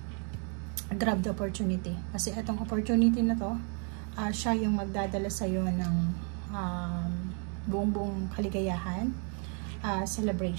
grab the opportunity. Kasi itong opportunity na to, siya yung magdadala sa'yo ng buong kaligayahan,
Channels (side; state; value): left; quieter; 40.0 dB